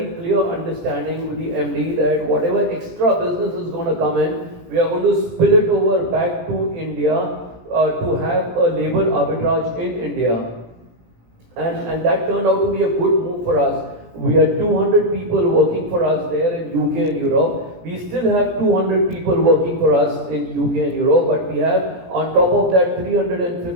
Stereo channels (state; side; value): late; left; 17 ms